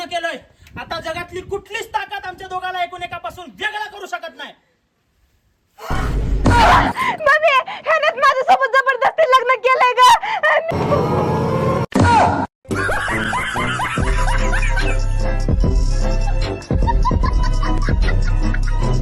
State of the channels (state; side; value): identical; both; correlation 1.00